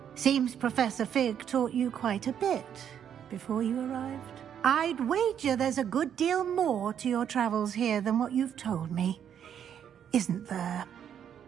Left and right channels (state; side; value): quieter; left; 8.9 dB